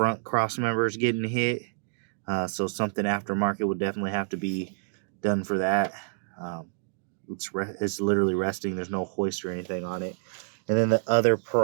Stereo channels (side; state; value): left; silent; digital silence